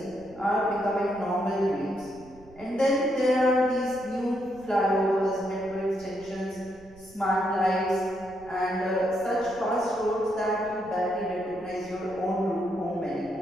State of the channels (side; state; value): right; noise; rumble, 23 dB below the sound